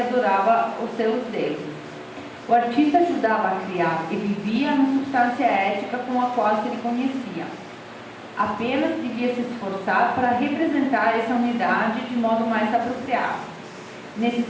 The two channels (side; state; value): both; identical; correlation 1.00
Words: os seus deuses. O artista ajudava a criar e vivia na substância ética com a qual se reconhecia. Apenas devia se esforçar para representar essa unidade de modo mais apropriado. Nesse